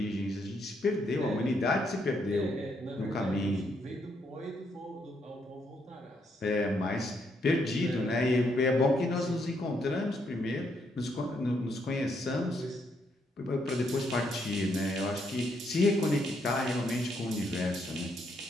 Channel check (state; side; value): normal; both; correlation 0.75